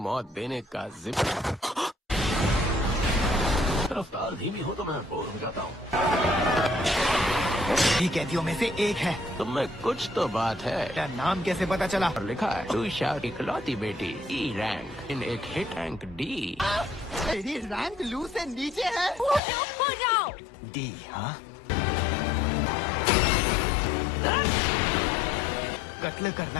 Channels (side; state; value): right; drops out; at 19.4 s